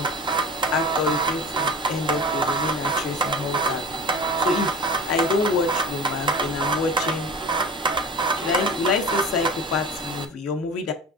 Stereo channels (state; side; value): normal; both; correlation 0.35